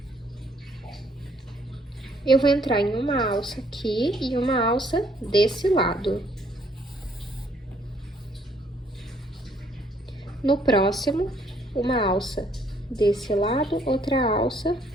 Eu vou entrar em uma alça aqui e uma alça desse lado. No próximo, uma alça desse lado, outra alça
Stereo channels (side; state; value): both; normal; correlation 0.66